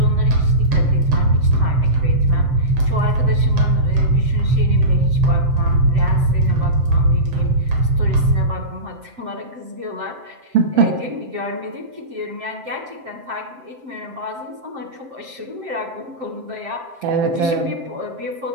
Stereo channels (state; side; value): late; left; 7.7 ms